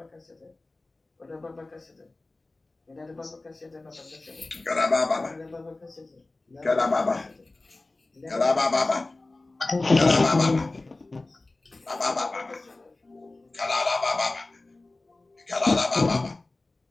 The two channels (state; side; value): quieter; right; 3.1 dB